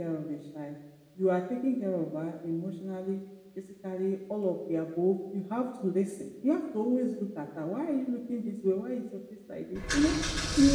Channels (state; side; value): identical; both; correlation 1.00